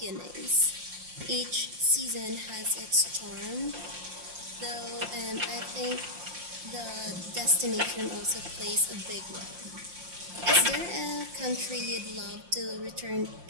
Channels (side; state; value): left; late; 5.7 ms